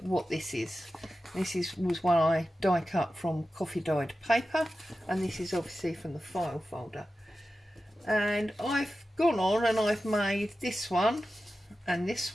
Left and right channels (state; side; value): normal; both; correlation 0.93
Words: what this is. Was one I die cut from coffee dyed paper, and this is obviously from the file folder. And I've gone on and I've made this one and this